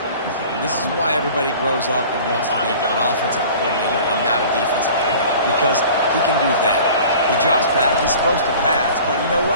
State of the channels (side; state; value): both; inverted; correlation -0.44